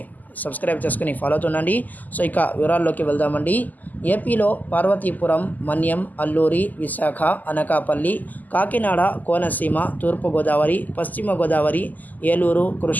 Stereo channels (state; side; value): late; right; 0.082 ms